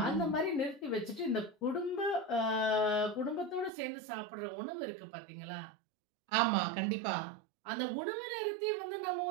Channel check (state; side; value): drops out; left; at 3.7 s